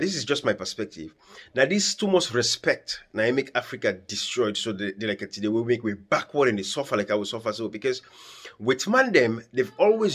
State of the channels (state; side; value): identical; both; correlation 1.00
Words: is just my perspective. Now, this too much respect. Now, I make Africa destroyed. So they like today, we make way backward and they suffer like I will suffer. So because with man them, they've